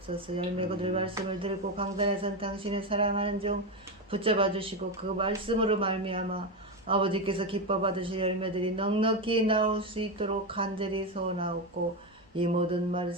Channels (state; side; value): normal; both; correlation 0.12